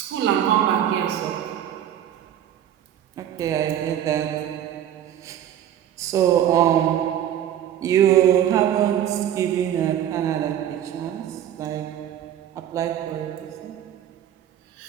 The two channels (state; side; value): quieter; left; 10.8 dB